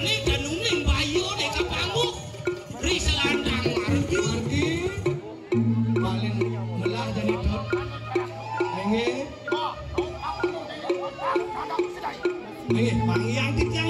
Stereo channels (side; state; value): both; identical; correlation 1.00